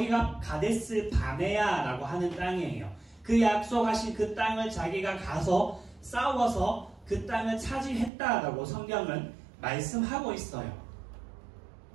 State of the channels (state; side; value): drops out; left; at 8.1 s